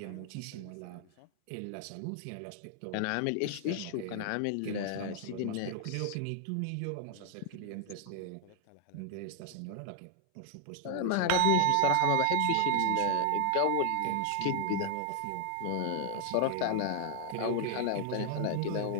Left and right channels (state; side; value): different; both; correlation 0.00